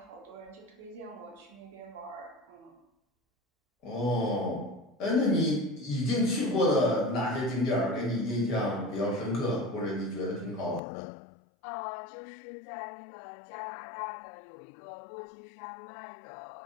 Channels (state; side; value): drops out; right; at 10.8 s